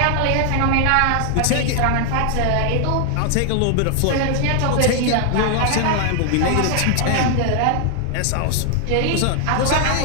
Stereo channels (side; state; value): both; different; correlation 0.00